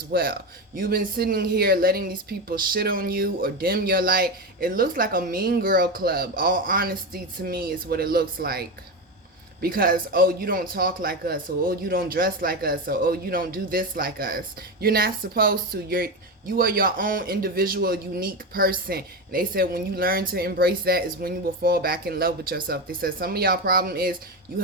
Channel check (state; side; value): normal; both; correlation 0.17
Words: well. You've been sitting here letting these people shit on you or dim your light. It looks like a mean girl club. All honesty, to me, is what it looks like. Because, oh, you don't talk like us, or oh, you don't dress like us, or oh, you don't do this like us. You're not supposed to. You are your own individual, unique person. And they said when you learn to embrace that is when you will fall back in love with yourself. They said some of y'all problem is you